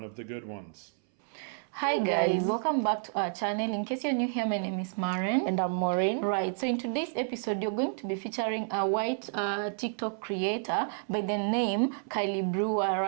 of the good ones. Hi guys, welcome back to our channel. In case you're new here, my name is Maren. And I'm Maureen. Right, so in today's episode, you're going to be featuring a white TikTok creator by the name Kylie Brewer,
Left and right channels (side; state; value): left; silent; 57 dB below the other